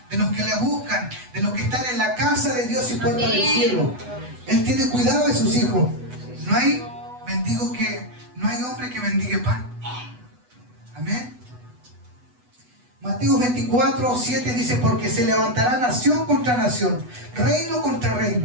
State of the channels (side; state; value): left; late; 8.1 ms